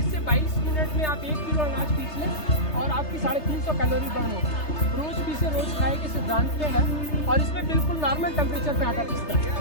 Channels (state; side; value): late; right; 3.3 ms